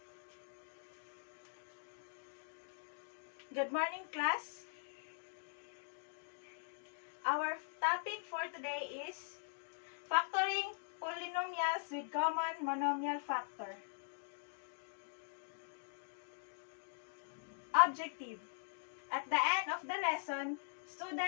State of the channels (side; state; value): right; silent; digital silence